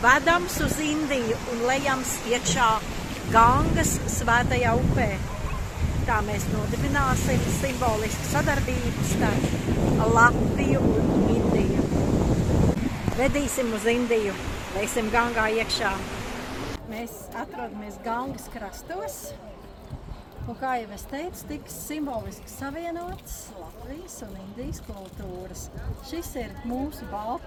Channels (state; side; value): identical; both; correlation 1.00